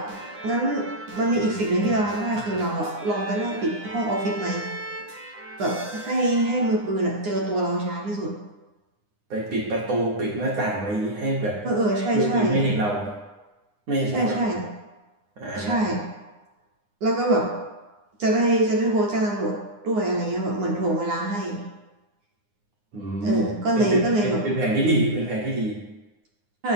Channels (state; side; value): late; left; 9.7 ms